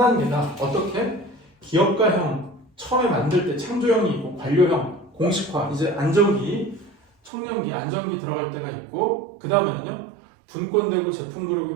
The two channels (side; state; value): left; drops out; at 7.3 s